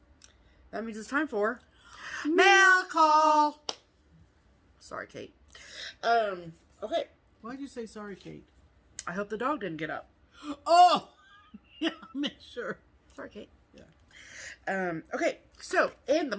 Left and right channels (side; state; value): both; identical; correlation 1.00